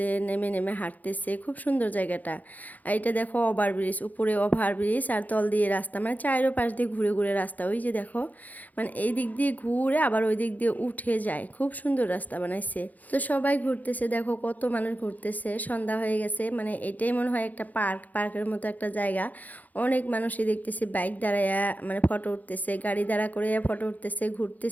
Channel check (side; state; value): right; late; 0.080 ms